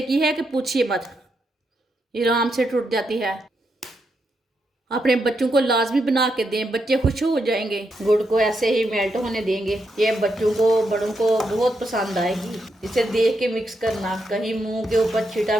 की है कि पूछिए मत। ये आराम से टूट जाती है। अपने बच्चों को लाजमी बना के दें, बच्चे खुश हो जाएंगे। गुड़ को ऐसे ही मेल्ट होने देंगे। ये बच्चों को बड़ों को बहुत पसंद आएगी। इसे देख के मिक्स करना, कहीं मुंह के ऊपर छींटा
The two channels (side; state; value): both; normal; correlation 0.82